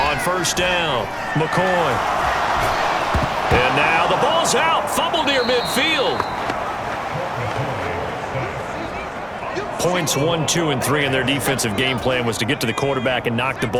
On 1st down, McCoy. And now the ball's out. Fumble near midfield. Points 1, 2, and 3 in their defensive game plan was to get to the quarterback and knock the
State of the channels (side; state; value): both; identical; correlation 1.00